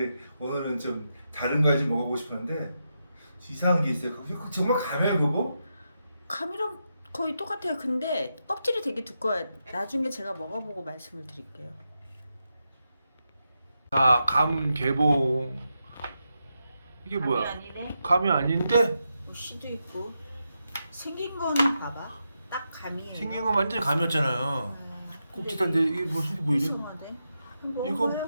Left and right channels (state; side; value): inverted; both; correlation -0.86